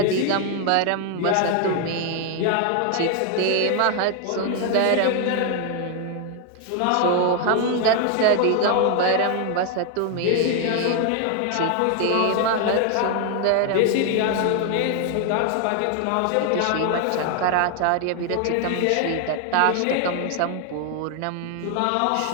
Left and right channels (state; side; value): different; both; correlation 0.00